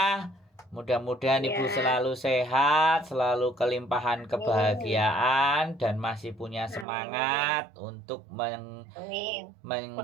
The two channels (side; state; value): left; drops out; at 6.9 s